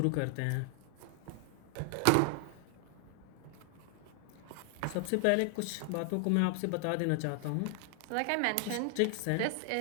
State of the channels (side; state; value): both; different; correlation 0.00